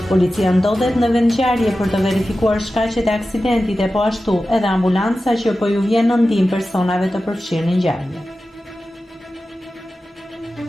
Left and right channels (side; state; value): both; normal; correlation 0.94